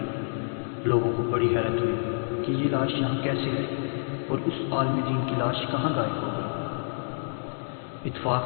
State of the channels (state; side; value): silent; right; digital silence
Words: لوگوں کو بڑی حیرت ہوئی کہ یہ لاش یہاں کیسے ہے اور اس عالم دین کی لاش کہاں غائب ہو گئی۔ اتفاق